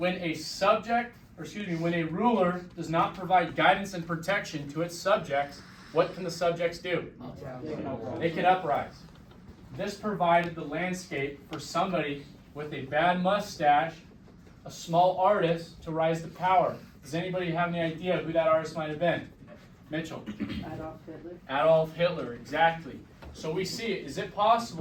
a when a ruler does not provide guidance and protection to its subjects, what can the subjects do? They can uprise. This provided the landscape for somebody with a bad mustache, a small artist, to rise to power. Does anybody have any idea who that artist might have been? Mitchell. Adolf Hitler. Adolf Hitler, exactly. So we see it. Is it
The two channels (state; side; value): identical; both; correlation 1.00